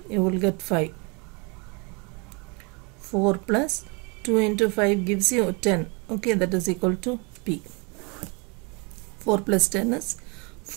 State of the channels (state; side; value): quieter; left; 31.1 dB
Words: you will get 5. 4 plus 2 into 5 gives you 10. Okay, that is equal to p. 4 plus 10 is